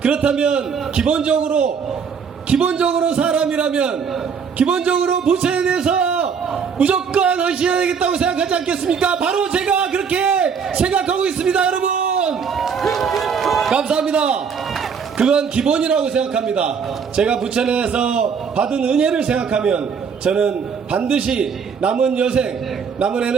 그렇다면 기본적으로 사람이라면 기본적으로 부천에 대해서 무조건 헌신해야 되겠다고 생각하지 않겠습니까? 바로 제가 그렇게 생각하고 있습니다. 여러분, 감사합니다. 그건 기본이라고 생각합니다. 제가 부천에서 받은 은혜를 생각하면 저는 반드시 남은 여생, 남은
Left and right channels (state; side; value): quieter; left; 6.4 dB